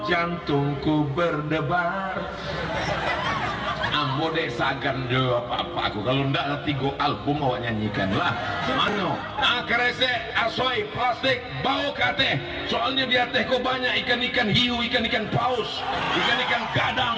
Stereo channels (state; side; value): identical; both; correlation 1.00